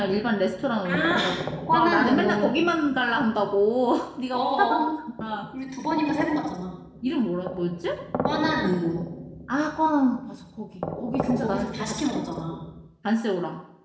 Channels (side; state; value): both; identical; correlation 1.00